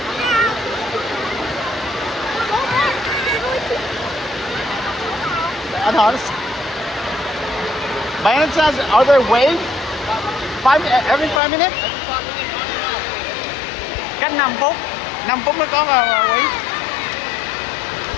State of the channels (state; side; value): drops out; right; at 11.4 s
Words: I thought it's... By any chance, are there waves? Every 5 minutes? Cách 5 phút. 5 phút mới có wave.